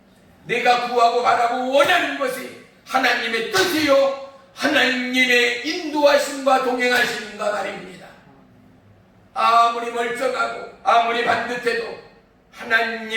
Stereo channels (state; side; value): identical; both; correlation 1.00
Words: 내가 구하고 바라고 원하는 것이 하나님의 뜻이요 하나님의 인도하심과 동행하심인가 말입니다. 아무리 멀쩡하고 아무리 반듯해도